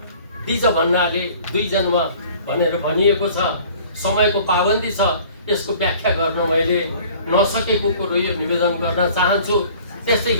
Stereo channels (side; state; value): both; inverted; correlation -0.50